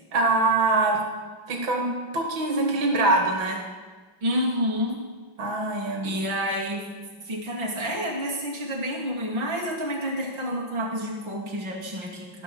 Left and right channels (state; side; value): late; left; 5.7 ms